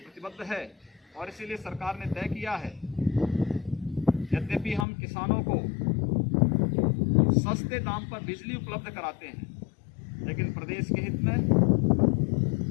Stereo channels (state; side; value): drops out; right; at 4.9 s